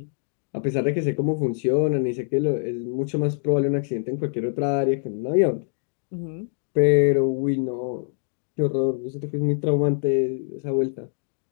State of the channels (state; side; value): silent; right; digital silence